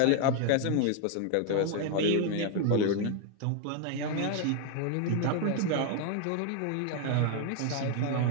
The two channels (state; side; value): different; both; correlation 0.00